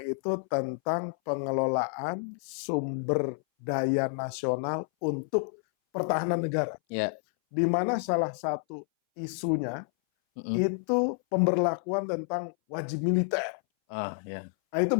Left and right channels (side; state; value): right; silent; 58 dB below the other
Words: itu tentang pengelolaan sumber daya nasional untuk pertahanan negara. Di mana salah satu isunya itu pemberlakuan tentang wajib militer. Nah, itu